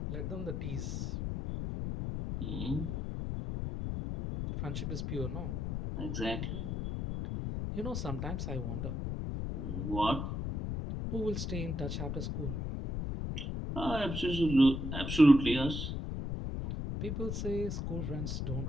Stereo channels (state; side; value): noise; left; rumble, 3 dB below the sound